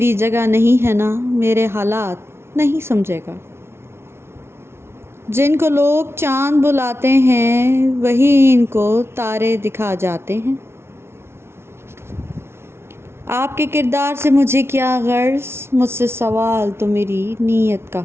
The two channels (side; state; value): left; late; 0.12 ms